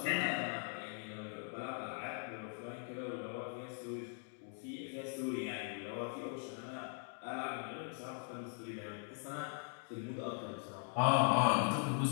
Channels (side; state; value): right; silent; 51 dB below the other